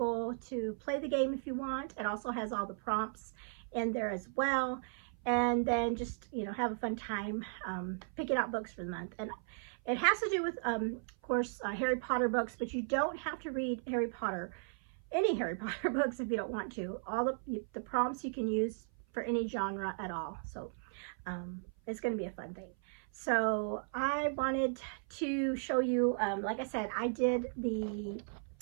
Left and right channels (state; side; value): silent; left; 54 dB below the other